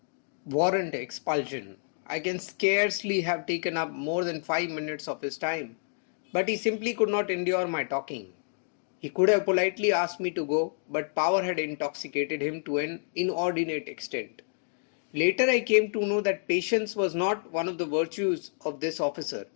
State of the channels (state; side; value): silent; right; digital silence